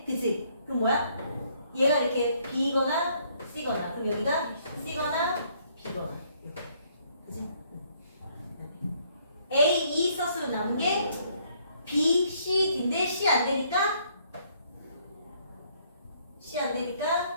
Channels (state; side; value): inverted; both; correlation -0.66